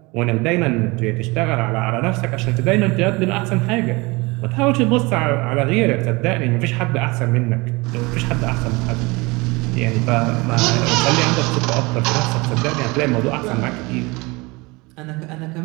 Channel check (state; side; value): quieter; left; 24.8 dB